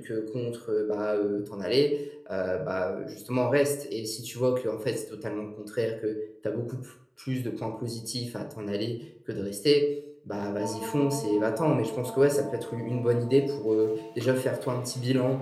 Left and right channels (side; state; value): both; identical; correlation 1.00